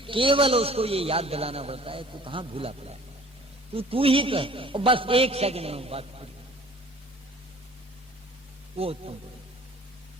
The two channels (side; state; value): both; normal; correlation 0.50